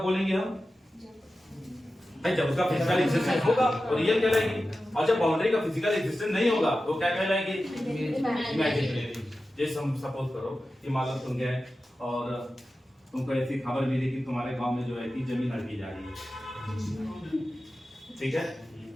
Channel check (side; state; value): both; normal; correlation 0.93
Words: बोलेंगे हम? जब उसका फिजिकल एग्जिस्टेंस होगा तो रियल कहलाएगी, और जब बाउंड्री का फिजिकल एग्जिस्टेंस नहीं होगा तो क्या कहलाएगी? इमेजिनरी। जैसे हम सपोज करो कि मान लो तुम गए और तुमको ऐसी खबर मिली कि तुम्हारे गांव में जो है कि जमीन हड़पी जा रही है, ठीक है?